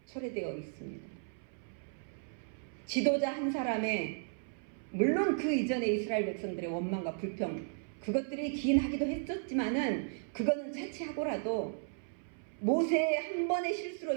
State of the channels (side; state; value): left; silent; 54 dB below the other